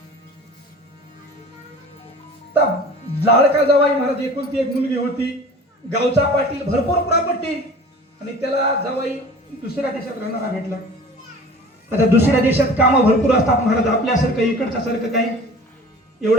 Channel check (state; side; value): normal; both; correlation 0.42